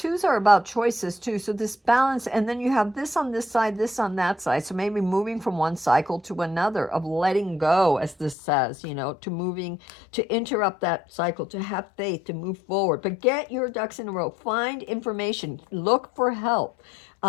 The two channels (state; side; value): drops out; right; at 8.3 s